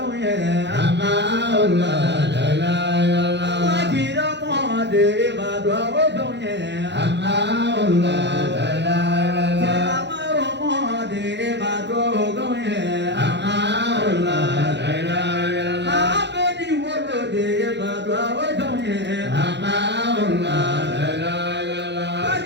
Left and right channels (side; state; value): left; late; 0.51 ms